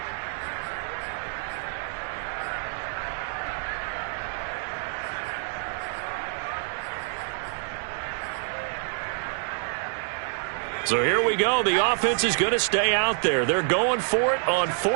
So here we go. The offense is going to stay out there. They're going for it on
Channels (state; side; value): silent; left; 60 dB below the other